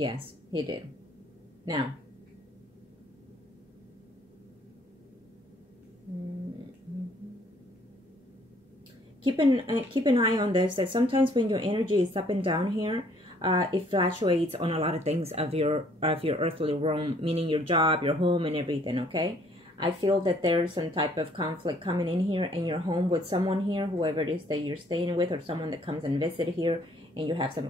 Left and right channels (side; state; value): both; normal; correlation 0.62